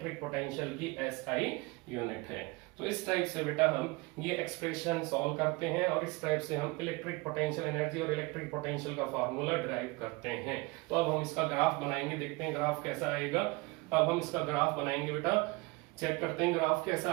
पोटेंशियल की SI यूनिट है। तो इस टाइप से बेटा हम ये एक्सप्रेशन सॉल्व करते हैं और इस टाइप से हम इलेक्ट्रिक पोटेंशियल एनर्जी और इलेक्ट्रिक पोटेंशियल का फार्मूला डिराइव करते हैं। तो अब हम इसका ग्राफ बनाएंगे, देखते हैं ग्राफ कैसा आएगा। अब हम इसका ग्राफ बनाएंगे बेटा, चेक करते हैं ग्राफ कैसा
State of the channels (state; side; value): quieter; left; 24.9 dB